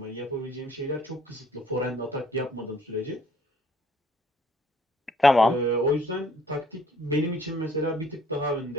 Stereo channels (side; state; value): both; normal; correlation 0.60